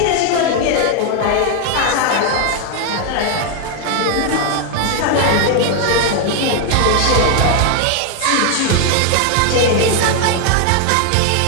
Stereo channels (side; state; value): both; different; correlation 0.01